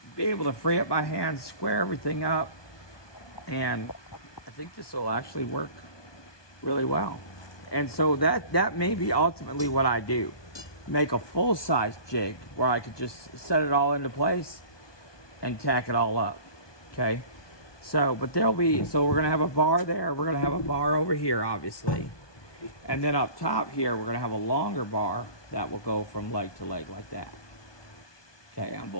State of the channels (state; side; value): late; right; 1.2 ms